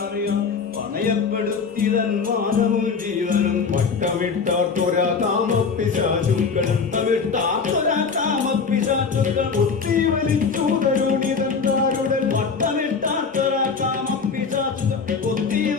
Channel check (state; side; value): quieter; right; 5.3 dB